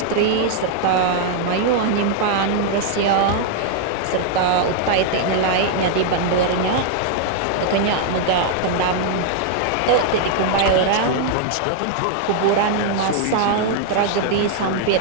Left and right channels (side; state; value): both; different; correlation 0.00